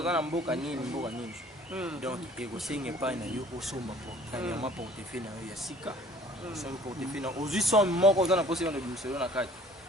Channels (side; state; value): both; normal; correlation 0.52